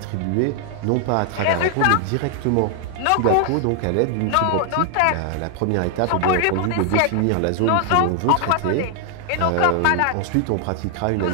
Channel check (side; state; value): both; different; correlation 0.00